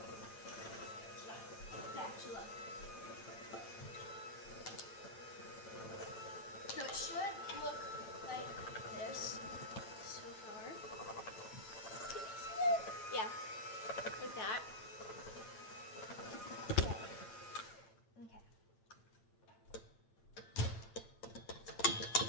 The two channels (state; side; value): late; right; 8.9 ms